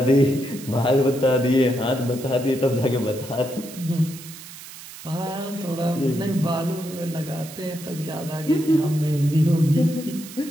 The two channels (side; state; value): right; noise; hiss, 15 dB below the sound